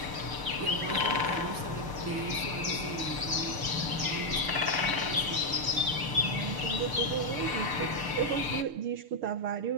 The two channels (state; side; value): late; left; 6.7 ms